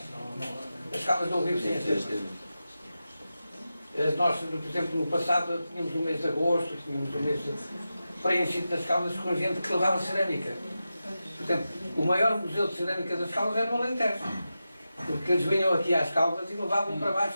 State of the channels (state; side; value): inverted; both; correlation -0.92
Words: As Caldas não vivem sem as termas. Nós, por exemplo, no passado tínhamos o mês de agosto, tínhamos o mês preenchido das Caldas com gente que levava cerâmica. Por exemplo, o maior museu de cerâmica das Caldas era no Alentejo. Porque eles vinham aqui às Caldas e levavam para